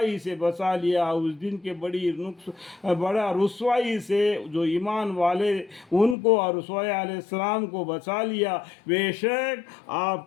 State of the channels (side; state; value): right; drops out; at 6.2 s